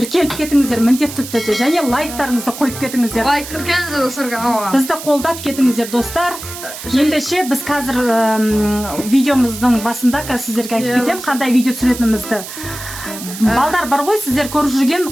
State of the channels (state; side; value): noise; right; hiss, 11 dB below the sound